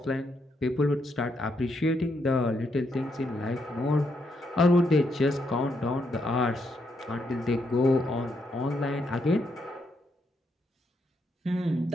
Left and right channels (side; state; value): both; normal; correlation 0.78